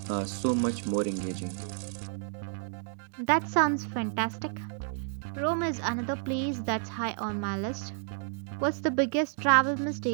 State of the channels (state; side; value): silent; left; 57 dB below the other